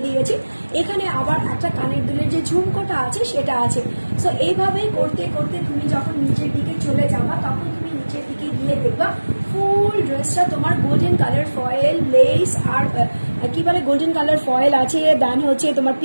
দিয়েছি, এখানে আবার একটা কানের দুলের যে ঝুমকোটা আছে সেটা আছে। সো এইভাবেই করতে করতে তুমি যখন নিচের দিকে চলে যাবা, তখন তুমি নিচের দিকে গিয়ে দেখবা ফুল ড্রেসটা তোমার গোল্ডেন কালার ফয়েল লেস আর কি বলে গোল্ডেন কালার ফয়েল আছে, দেন হচ্ছে তোমার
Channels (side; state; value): both; inverted; correlation -1.00